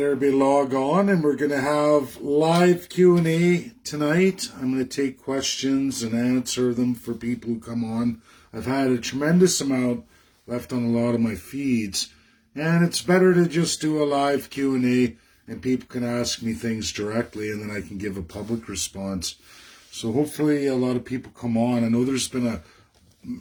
everybody log on and we're gonna have live Q&A tonight. I'm gonna take questions and answer them for people who come on. I've had a tremendous amount left on a lot of my feeds, and it's better to just do a live Q&A and people can ask me things directly and then I can give a public response. So hopefully a lot of people come on. I know there's been a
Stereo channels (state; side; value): identical; both; correlation 1.00